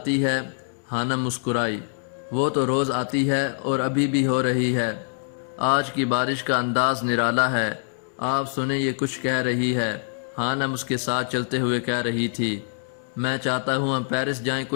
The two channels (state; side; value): silent; right; 62 dB below the other